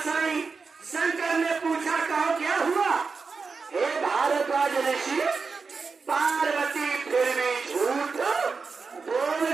आई, शंकर ने पूछा, कहो क्या हुआ? हे भारद्वाज ऋषि, पार्वती फिर भी झूठ बोल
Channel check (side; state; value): left; quieter; 4.8 dB